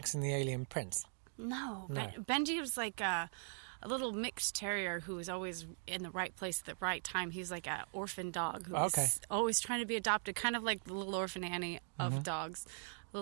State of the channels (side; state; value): left; silent; digital silence